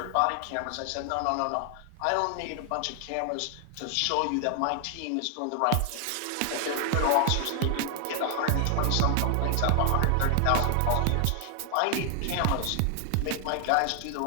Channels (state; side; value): different; both; correlation 0.00